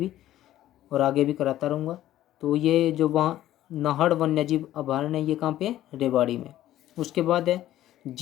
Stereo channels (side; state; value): right; quieter; 13.5 dB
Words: और आगे भी कराता रहूँगा। तो ये जो वहाँ नाहड़ वन्य जीव अभयारण्य ये कहाँ पे है, रेवाड़ी में। उसके बाद है